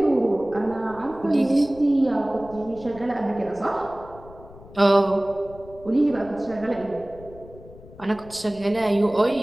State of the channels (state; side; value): noise; left; rumble, 19 dB below the sound